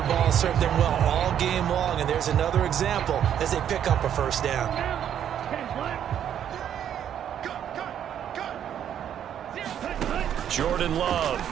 ball served them well all game long, and there's another example as they pick up a 1st down. Jordan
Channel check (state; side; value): quieter; left; 9.6 dB